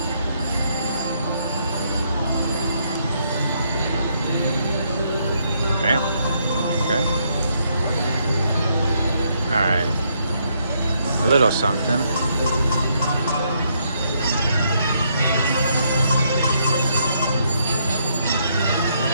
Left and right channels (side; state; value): both; inverted; correlation -0.74